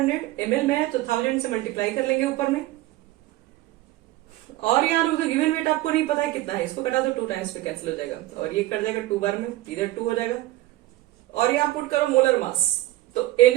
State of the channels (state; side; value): quieter; left; 17.0 dB